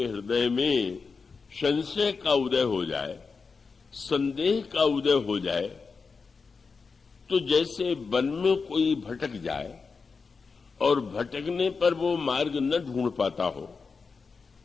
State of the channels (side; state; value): right; quieter; 4.9 dB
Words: हृदय में संशय का उदय हो जाए, संदेह का उदय हो जाए, तो जैसे वन में कोई भटक जाए और भटकने पर वो मार्ग न ढूंढ पाता हो,